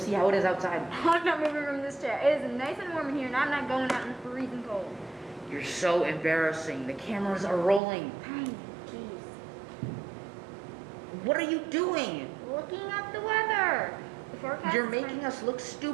how it is outside. I'm not moving from this chair. It is nice and warm in here, and I'm not going out in the freezing cold. You're so embarrassing. The cameras are rolling. Fine, jeez. What are you doing? Looking up the weather. The forecast You're making us look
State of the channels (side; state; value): left; drops out; at 7.8 s